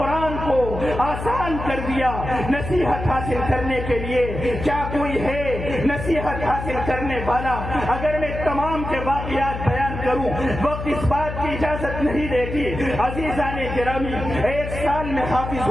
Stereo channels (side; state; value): left; noise; hum, 7 dB below the sound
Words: کو آسان کر دیا نصیحت حاصل کرنے کے لیے. کیا کوئی ہے نصیحت حاصل کرنے والا؟ اگر میں تمام کے واقعات بیان کروں وقت اس بات کی اجازت نہیں دیتی. عزیزان گرامی، 1 سال میں حافظ